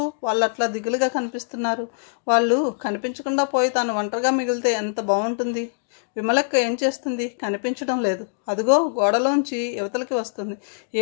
వాళ్ళు అట్లా దిగులుగా కనిపిస్తున్నారు? వాళ్ళు కనిపించకుండా పోయి తాను ఒంటరిగా మిగిలితే ఎంత బాగుంటుంది. విమలక్క ఏం చేస్తుంది? కనిపించడం లేదు. అదిగో గోడలోంచి యువతలకి వస్తుంది.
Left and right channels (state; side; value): silent; right; digital silence